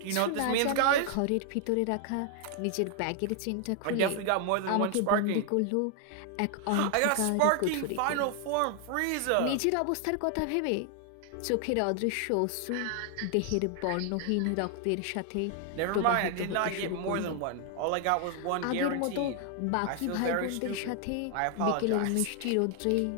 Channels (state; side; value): different; both; correlation 0.00